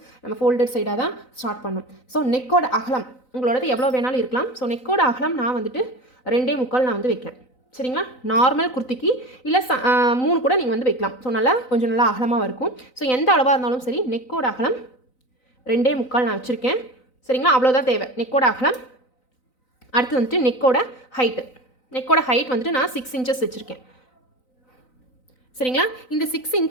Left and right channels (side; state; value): right; late; 3.9 ms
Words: நம்ம ஃபோல்டட் சைடாக தான் ஸ்டார்ட் பண்ணணும். ஸோ நெக்கோட அகலம் உங்களோடது எவ்வளோ வேணாலும் இருக்கலாம். ஸோ நெக்கோட அகலம் நான் வந்துட்டு 2.25 நான் வந்து வைக்கிறேன். சரிங்களா. நார்மல் குர்த்திக்கு இல்லை 3 கூட நீங்கள் வந்து வைக்கலாம். ஸோ நல்லா கொஞ்சம் நல்லா அகலமாக இருக்கும். ஸோ எந்த அளவாக இருந்தாலும் சரி நெக்கோட அகலம் 2.25 நான் வச்சுருக்கேன். சரிங்களா. அவ்வளோதான் தேவை நெக்கோட அகலம். அடுத்து வந்துட்டு நெக்கோட ஹைட் வந்துட்டு நான் 6 இன்ச்சஸ் வச்சுருக்கேன். சரிங்களா. இந்த 6